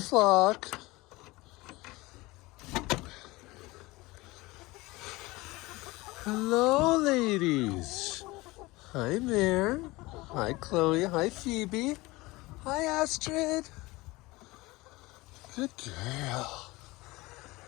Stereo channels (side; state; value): right; quieter; 21.4 dB